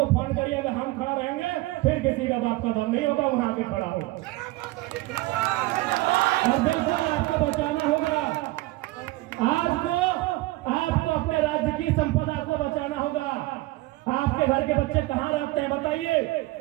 फोन करिएगा, हम खड़ा रहेंगे। फिर किसी का बाप का दम नहीं होगा, वहां भी खड़ा होगा और बिल्कुल आपको बचाना होगा। आज को आपको अपने राज्य की संपदा को बचाना होगा। आपके घर के बच्चे कहां रहते हैं बताइए,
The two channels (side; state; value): left; quieter; 19.7 dB